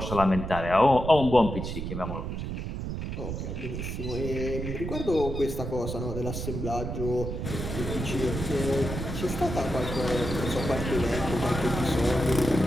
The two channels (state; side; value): noise; right; rumble, 5 dB below the sound